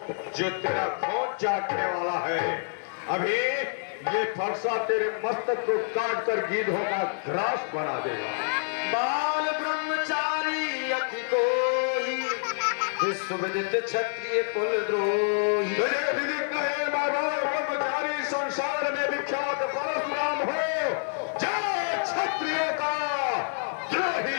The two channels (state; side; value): silent; right; digital silence